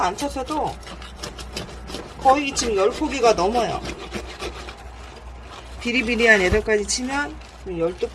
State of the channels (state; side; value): identical; both; correlation 1.00